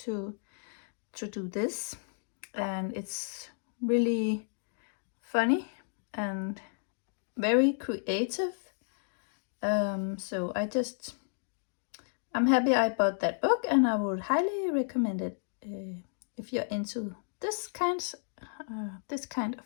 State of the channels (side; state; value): right; silent; digital silence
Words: to do this. And it's really funny and very creative. So I'm happy I bought that book, and I would highly recommend it if you're into this kind of